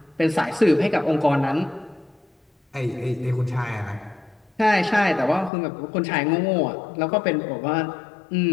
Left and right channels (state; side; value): drops out; right; at 5.5 s